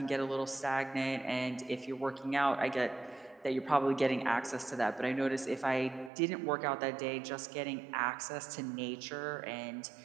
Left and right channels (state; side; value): drops out; left; at 6.1 s